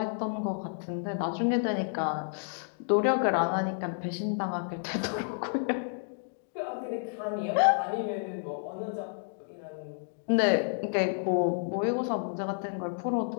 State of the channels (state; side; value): silent; right; digital silence